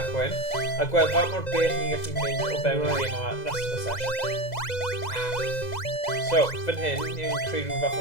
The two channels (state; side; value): late; right; 2.0 ms